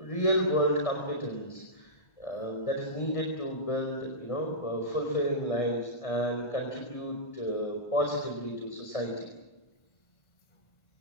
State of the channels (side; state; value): right; late; 1.6 ms